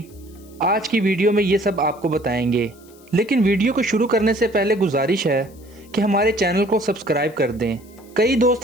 आज की वीडियो में ये सब आपको बताएंगे। लेकिन वीडियो को शुरू करने से पहले गुजारिश है कि हमारे चैनल को सब्सक्राइब कर दें। कई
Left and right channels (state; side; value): noise; left; hiss, 27 dB below the sound